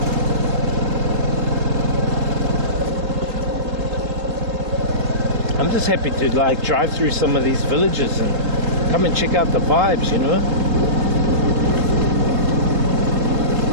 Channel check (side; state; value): left; late; 3.5 ms